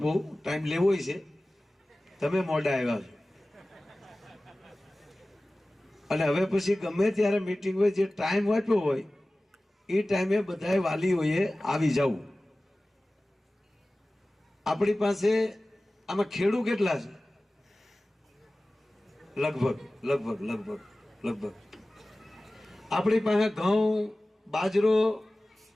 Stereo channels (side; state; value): both; normal; correlation 0.97